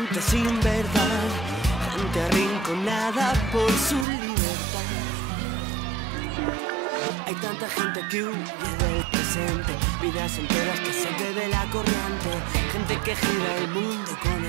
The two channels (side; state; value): left; drops out; at 4.0 s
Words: sin verdad, gente arrinconada por su libertad. Hay tanta gente que huye del presente, vidas enteras que se bebe la corriente. Gente que gira el mundo con